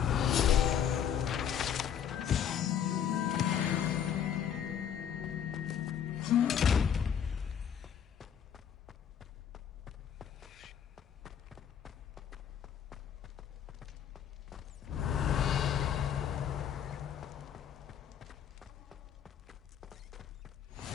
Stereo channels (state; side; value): quieter; right; 8.7 dB